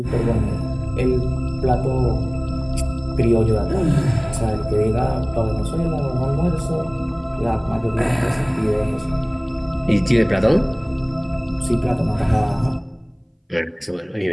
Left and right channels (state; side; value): identical; both; correlation 1.00